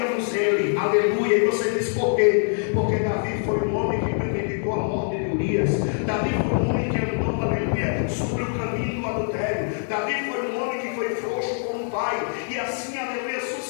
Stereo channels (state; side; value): silent; right; 62 dB below the other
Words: ele. Aleluia. E você diz por quê? Porque Davi foi um homem que premeditou a morte de Urias. Davi foi um homem que andou, aleluia, sobre o caminho do adultério. Davi foi um homem que foi frouxo como pai. E assim, aleluia,